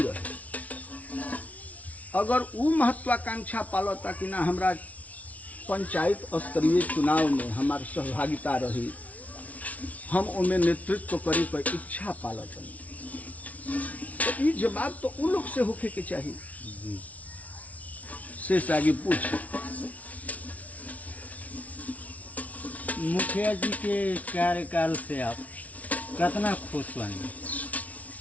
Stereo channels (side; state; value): right; late; 0.069 ms